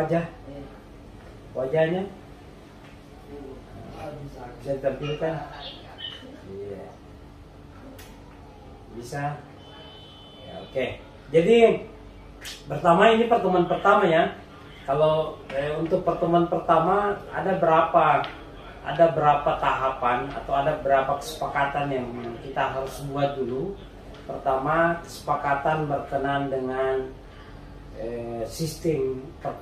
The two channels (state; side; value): identical; both; correlation 1.00